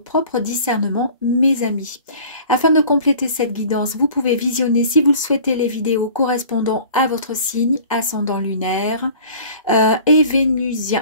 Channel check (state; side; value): inverted; both; correlation -0.46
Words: discernement, mes amis. Afin de compléter cette guidance, vous pouvez visionner, si vous le souhaitez, les vidéos correspondant à votre signe, ascendant lunaire et